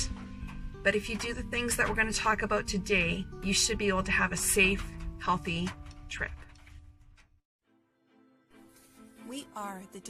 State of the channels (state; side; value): identical; both; correlation 1.00